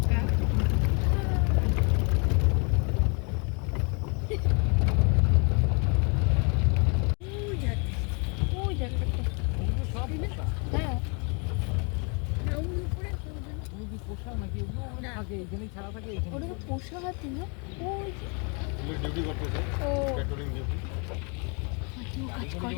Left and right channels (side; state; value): right; quieter; 35.1 dB